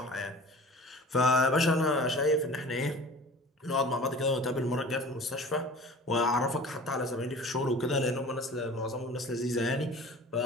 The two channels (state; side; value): normal; both; correlation 0.42